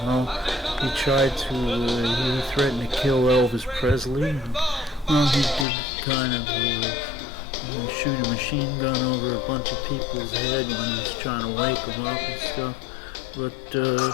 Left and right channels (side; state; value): right; drops out; at 5.7 s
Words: well, he threatened to kill Elvis Presley, and, well, he did kind of, shoot a machine gun over a bunch of people's head when he was trying to wake them up and stuff, but,